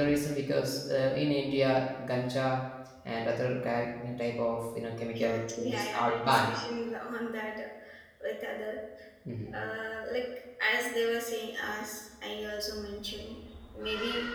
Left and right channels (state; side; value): identical; both; correlation 1.00